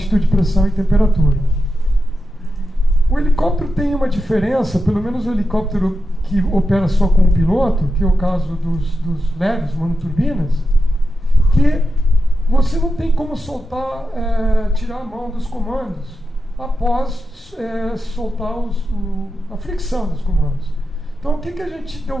pressão e temperatura. O helicóptero tem uma diferença, pelo menos o helicóptero que opera só com o piloto, que é o caso dos leves, monoturbinas, que você não tem como soltar, tirar a mão dos comandos após soltar a fricção dos comandos. Então, o que a gente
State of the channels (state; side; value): normal; both; correlation 0.89